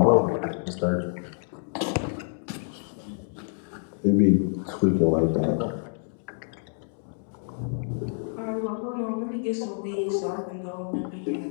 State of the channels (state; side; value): silent; right; digital silence